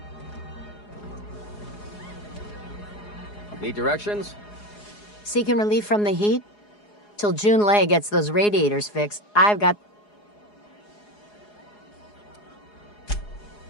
Need directions? Seeking relief from the heat? Till June Lay gets those radiators fixed, I've got...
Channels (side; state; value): right; late; 4.8 ms